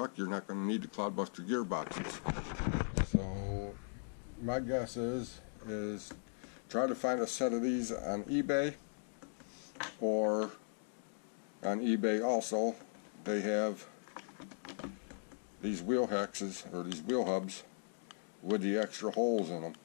you're not going to need the Clod Buster gearboxes. So my guess is try to find a set of these on eBay, or on eBay also they have these wheel hexes, or these wheel hubs with the extra holes in them.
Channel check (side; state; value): right; silent; digital silence